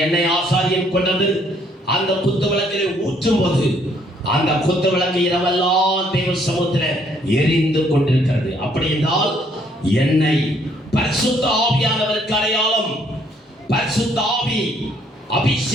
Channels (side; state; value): both; normal; correlation 0.66